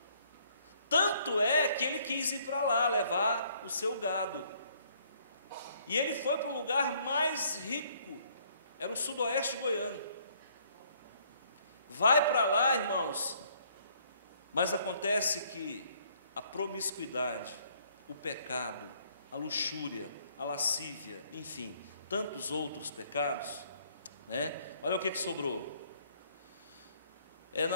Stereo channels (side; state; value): both; inverted; correlation -0.64